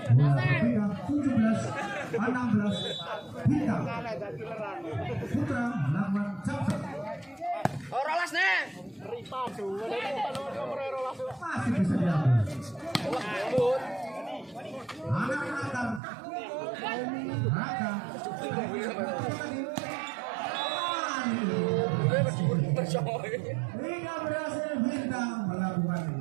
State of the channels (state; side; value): drops out; left; at 16.0 s